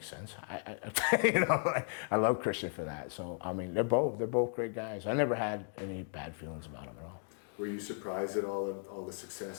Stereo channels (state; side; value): silent; right; 54 dB below the other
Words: sense. You know, like, I love Christian for that. So I mean, they're both great guys. I never had any bad feelings about them at all. Were you surprised at all the